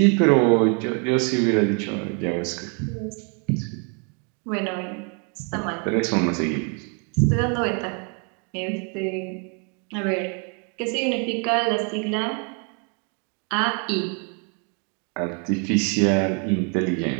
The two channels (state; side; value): quieter; left; 37.5 dB